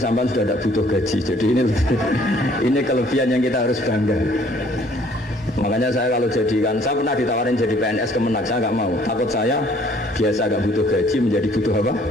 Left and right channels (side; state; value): both; normal; correlation 0.59